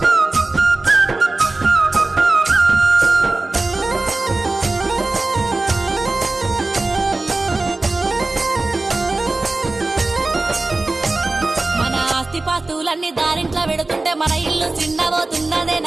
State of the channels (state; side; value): quieter; left; 3.2 dB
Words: పాస్తులన్నీ దారింట్లో పెడుతుంటే మన ఇల్లు చిన్నబోతున్నదే